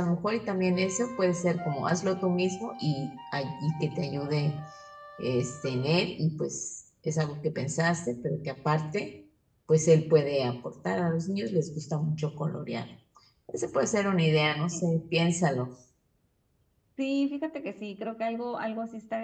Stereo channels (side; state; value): both; identical; correlation 1.00